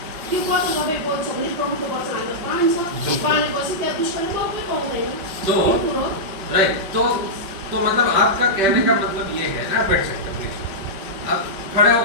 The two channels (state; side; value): late; left; 5.2 ms